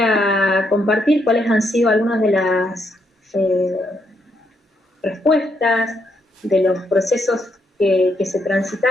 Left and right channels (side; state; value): both; normal; correlation 0.77